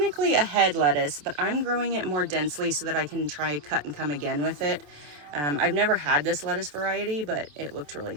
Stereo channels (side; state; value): left; late; 27 ms